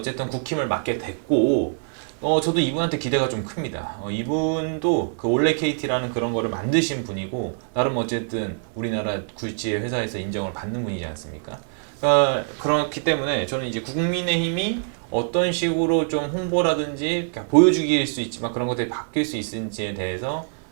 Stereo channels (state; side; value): silent; left; 62 dB below the other